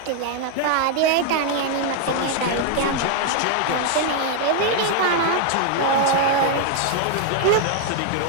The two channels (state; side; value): different; both; correlation 0.00